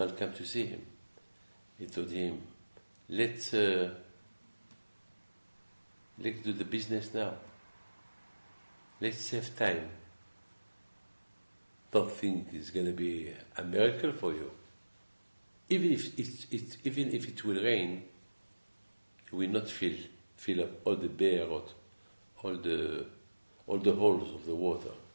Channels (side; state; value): both; inverted; correlation -1.00